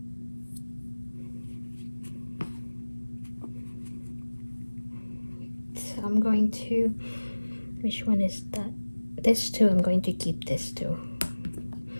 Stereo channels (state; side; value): inverted; both; correlation -1.00